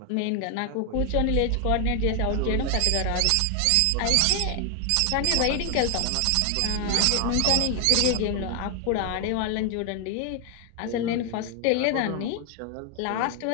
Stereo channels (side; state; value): both; different; correlation 0.00